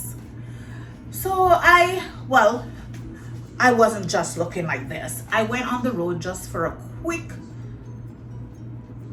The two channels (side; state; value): both; identical; correlation 1.00